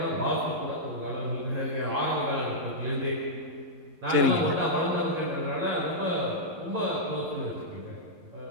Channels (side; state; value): left; late; 11 ms